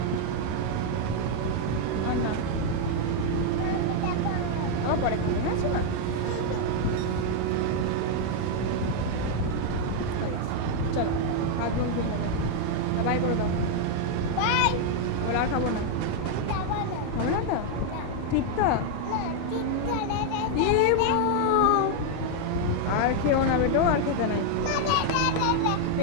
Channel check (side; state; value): both; different; correlation 0.00